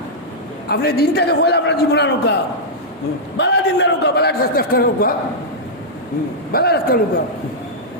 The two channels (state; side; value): normal; both; correlation -0.09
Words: আপনি দিনটাকে বলে আপনার জীবন নৌকা বালা দিন নৌকা বালা রাস্তা নৌকা বালা রাস্তা নৌকা